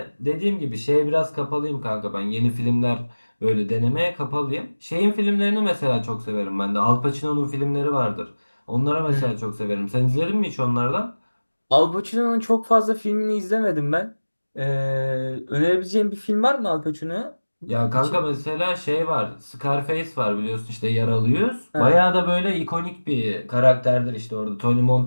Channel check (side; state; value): both; inverted; correlation -1.00